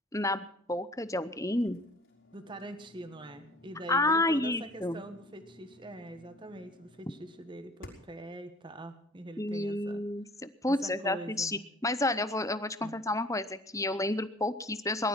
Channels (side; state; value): both; normal; correlation 0.49